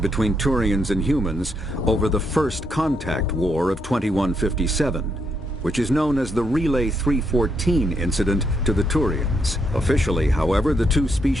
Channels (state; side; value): normal; both; correlation 0.77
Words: Turians and humans over the First Contact War of 2157, which is known as the Relay 314 incident to the Turians. Officially, however, the two